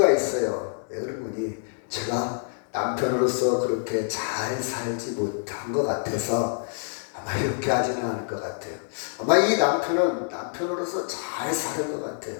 있어요. 왜 그런 거니? 제가 남편으로서 그렇게 잘 살지 못한 것 같아서 아마 이렇게 하지는 않을 것 같아요. 아마 이 남편은 남편으로서 잘 사는 것 같아요.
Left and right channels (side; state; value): right; silent; digital silence